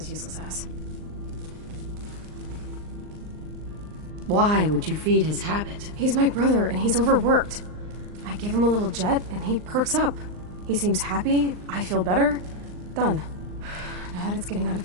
useless ass. Why would you feed his habit? He's my brother, and he's overworked. I give him a little Jet, and he perks up. He seems happy, I feel better. Done. Now that it's getting out of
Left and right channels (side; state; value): left; late; 39 ms